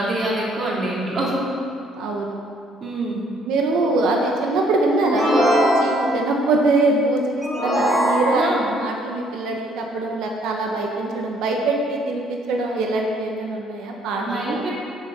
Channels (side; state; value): both; normal; correlation 0.64